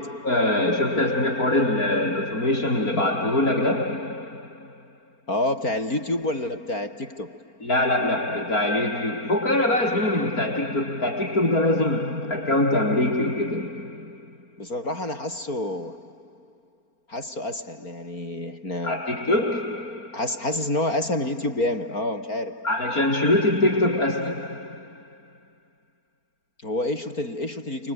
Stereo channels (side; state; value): right; late; 4.4 ms